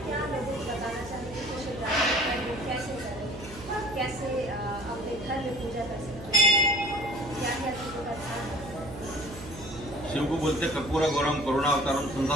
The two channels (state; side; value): noise; right; hum, 14 dB below the sound